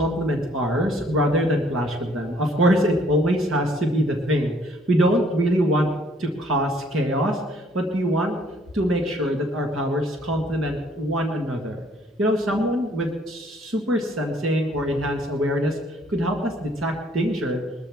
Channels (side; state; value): both; normal; correlation 0.62